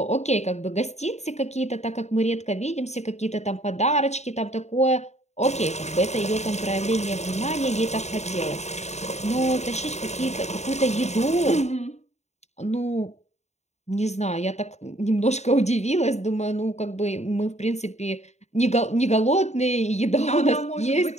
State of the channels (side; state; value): right; late; 0.32 ms